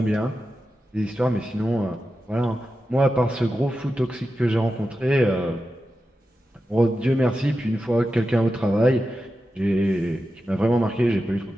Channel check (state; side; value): normal; both; correlation 0.91